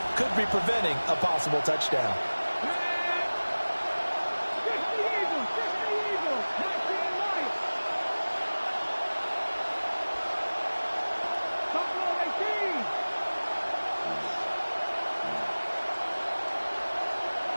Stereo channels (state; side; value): inverted; both; correlation -1.00